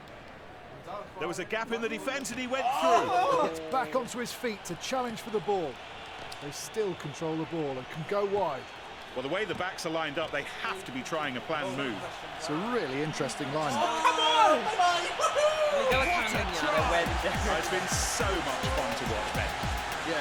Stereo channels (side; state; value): both; identical; correlation 1.00